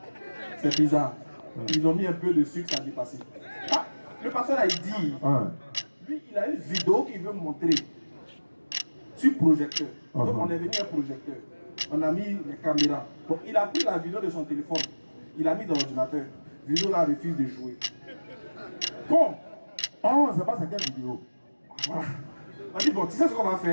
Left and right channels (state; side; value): inverted; both; correlation -1.00